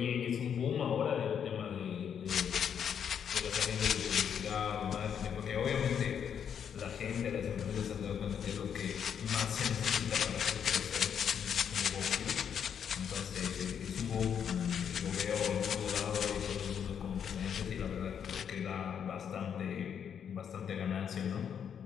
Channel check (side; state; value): right; quieter; 8.0 dB